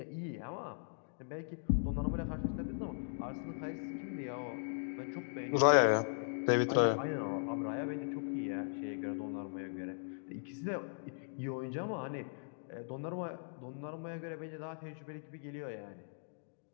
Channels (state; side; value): silent; right; digital silence